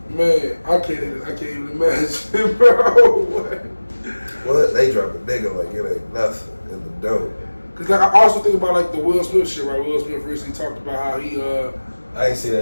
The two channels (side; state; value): both; inverted; correlation -1.00